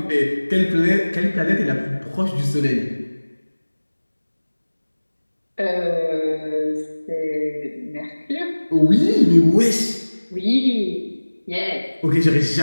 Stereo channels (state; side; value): inverted; both; correlation -1.00